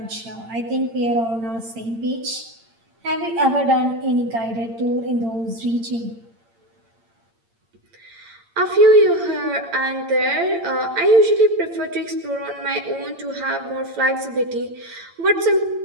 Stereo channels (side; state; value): left; late; 8.7 ms